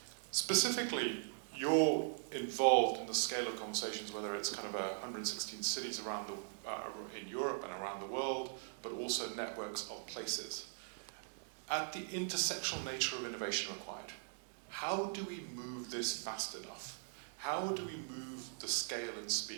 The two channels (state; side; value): silent; left; digital silence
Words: Specifically, you're involved in the scale of conversations, whether it's kind of 116 cities around in Europe and around the world, but also networks of places. At the intersectional nature of innovation required, how do we move this fast enough? How do we move the scale and